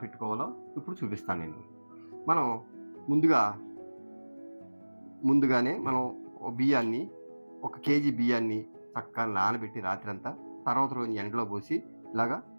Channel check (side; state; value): both; inverted; correlation -1.00